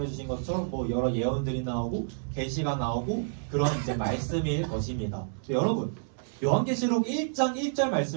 주신 것처럼 뭐 여러 예언들이 나오고 계시가 나오고 그런 이제 말씀일 것입니다. 여러분 요한계시록 1장 1절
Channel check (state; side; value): silent; left; 58 dB below the other